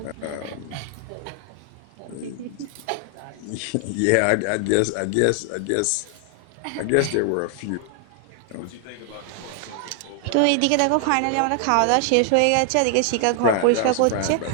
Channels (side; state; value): both; different; correlation 0.00